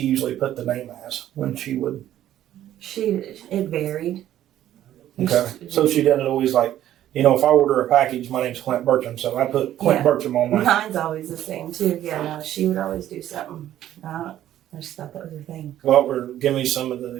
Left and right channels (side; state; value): left; quieter; 12.3 dB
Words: usually put the name as when she would? It varied. Okay. So she didn't always if I order a package, my name's Clint Bertram, so I put Clint Bertram on my. Mine's always the same too. Yeah, no, she would always do something. I just thought that was her thing. Well, give me some of the